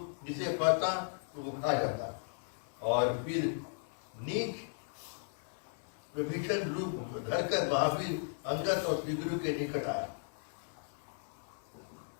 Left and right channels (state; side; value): silent; right; 54 dB below the other